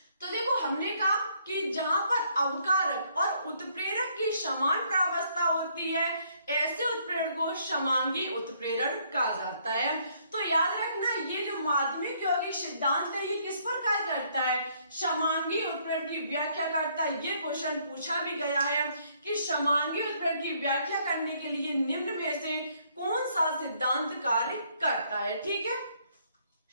तो देखो हमने कहा कि जहां पर अवकारक और उत्प्रेरक की समान प्रावस्था होती है, ऐसे उत्प्रेरण को समांगी उत्प्रेरण कहा जाता है। तो याद रखना, ये जो माध्यमिक यौगिक सिद्धांत है ये किस पर कार्य करता है, समांगी उत्प्रेरण की व्याख्या करता है। ये क्वेश्चन पूछा भी गया है कि समांगी उत्प्रेरण की व्याख्या करने के लिए निम्न में से कौन सा सिद्धांत कार्य करता है, ठीक है।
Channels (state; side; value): inverted; both; correlation -0.67